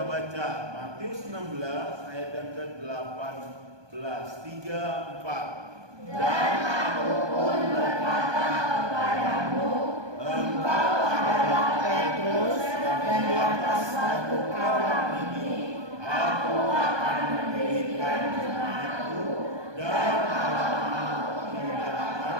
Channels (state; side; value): late; left; 1.2 ms